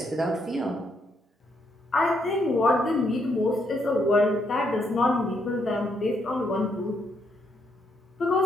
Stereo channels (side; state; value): both; normal; correlation 0.75